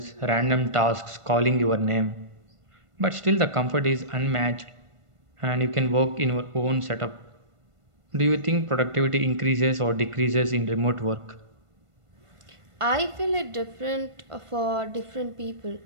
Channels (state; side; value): late; left; 1.5 ms